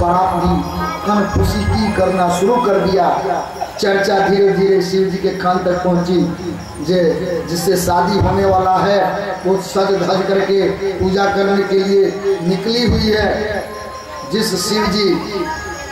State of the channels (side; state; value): both; identical; correlation 1.00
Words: भी कन खुशी की करना शुरू कर दिया। चर्चा धीरे धीरे शिव जी के कान तक पहुंची, जिससे शादी होने वाला है वो सज धज करके पूजा करने के लिए निकली हुई है। जिस शिव जी